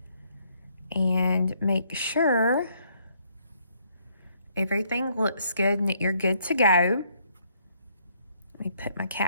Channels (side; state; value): both; inverted; correlation -0.69